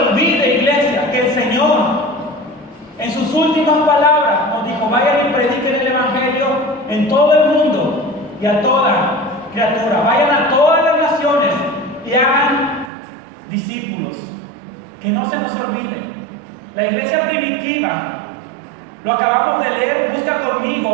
iglesia, que el Señor en sus últimas palabras nos dijo: vayan y prediquen el Evangelio en todo el mundo y a toda criatura. Vayan a todas las naciones y hagan discípulos. Que no se nos olvide. La iglesia primitiva, lo acabamos de leer, busca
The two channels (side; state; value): left; drops out; at 12.9 s